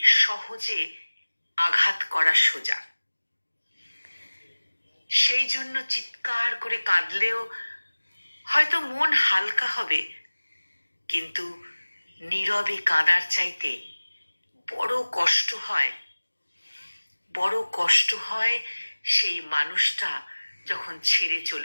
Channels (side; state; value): both; inverted; correlation -1.00